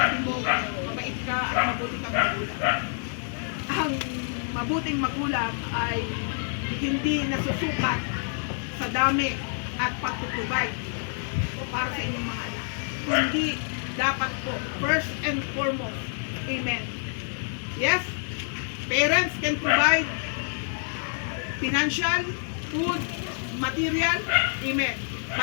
mo, mabait ka at mabuti kang magulang. Ang mabuting magulang ay hindi nasusukat sa dami at pagtutubay para sa inyong mga anak. Kundi dapat po, first and foremost, amen. Yes, parents can provide financial, food, material, amen.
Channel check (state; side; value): silent; right; 59 dB below the other